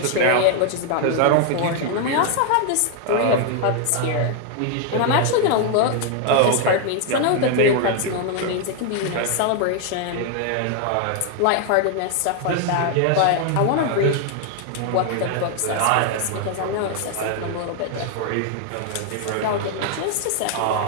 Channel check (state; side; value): different; both; correlation 0.00